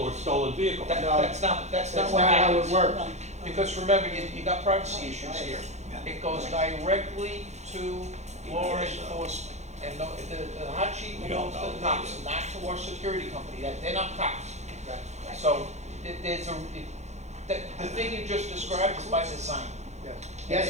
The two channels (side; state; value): left; late; 0.33 ms